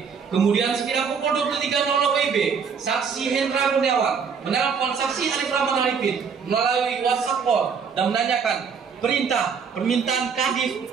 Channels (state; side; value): quieter; left; 6.2 dB